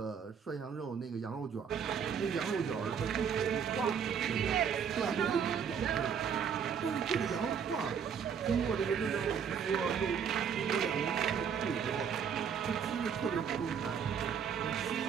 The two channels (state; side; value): quieter; left; 7.2 dB